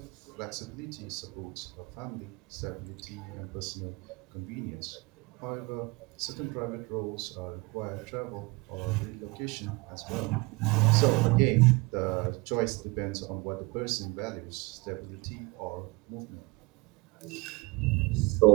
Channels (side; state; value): left; quieter; 25.2 dB